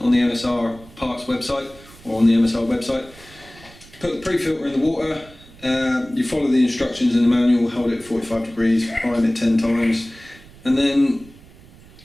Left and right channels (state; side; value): noise; right; rumble, 23 dB below the sound